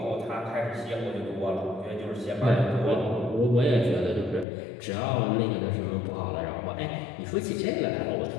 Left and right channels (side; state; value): right; drops out; at 4.5 s